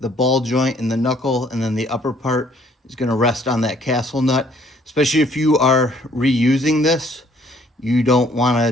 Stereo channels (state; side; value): normal; both; correlation 0.62